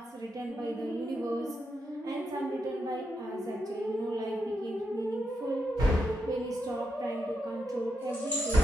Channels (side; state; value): both; normal; correlation 0.83